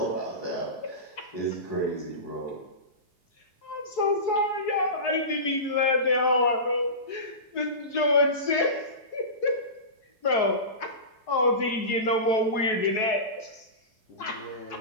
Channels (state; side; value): late; right; 4.7 ms